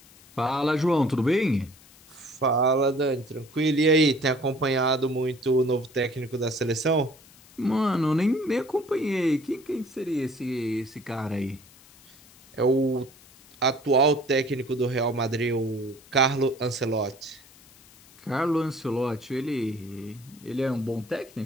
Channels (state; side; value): noise; left; hiss, 25 dB below the sound